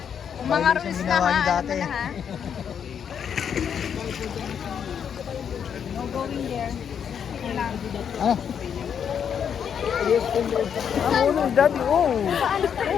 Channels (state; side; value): quieter; right; 7.9 dB